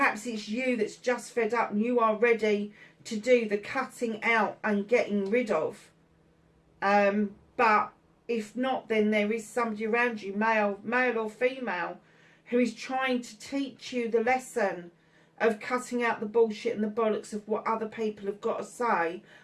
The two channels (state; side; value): identical; both; correlation 1.00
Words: it's you that's just fed up and you are ready to do the cutting out and getting rid of. But if not, then there is somebody around you, male or female, who is trying to teach you the lesson of cutting out the bullshit and the bollocks of what other people have got to say